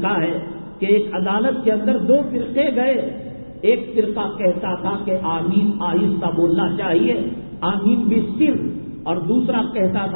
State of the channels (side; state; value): both; inverted; correlation -1.00